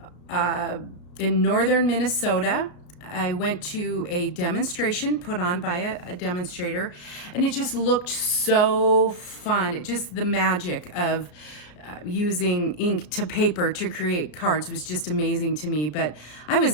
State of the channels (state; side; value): late; right; 34 ms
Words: in northern Minnesota. I went to a demonstration put on by a demonstrator, and it just looked so fun. It just, the magic of using ink to paper to create cards was just amazing to me. But I was